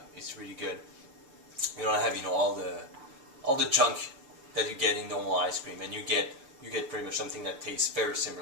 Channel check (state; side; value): late; left; 6.8 ms